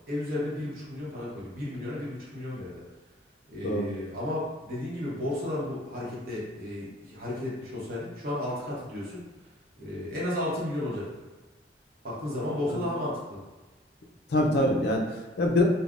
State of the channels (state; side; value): normal; both; correlation 0.51